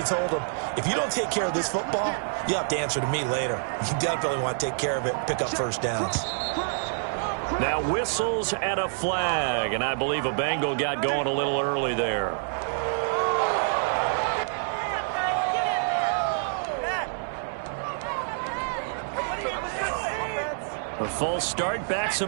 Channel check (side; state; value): left; silent; 60 dB below the other